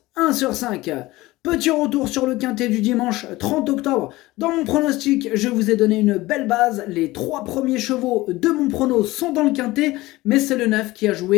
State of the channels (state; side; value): quieter; right; 19.1 dB